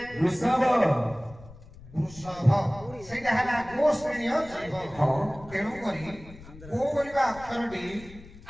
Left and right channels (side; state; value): left; noise; rumble, 19 dB below the sound